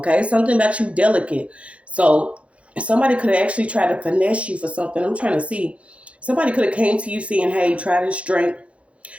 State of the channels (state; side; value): late; left; 0.062 ms